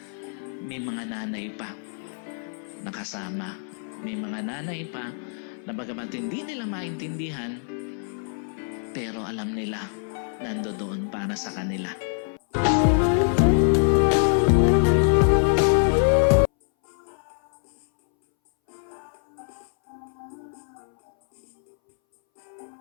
may mga nanay pa nakasama. May mga nanay pa na bagamat hindi nila maintindihan, pero alam nila nandoon para sa kanila.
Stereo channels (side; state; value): right; silent; 62 dB below the other